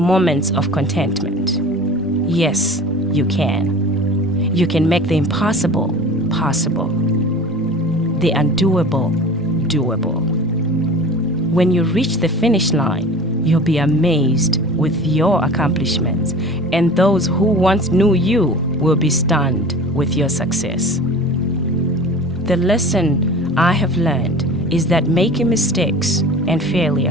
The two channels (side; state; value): both; normal; correlation 0.39